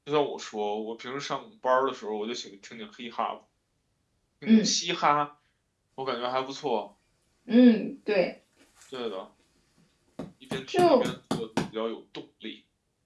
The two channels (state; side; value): identical; both; correlation 1.00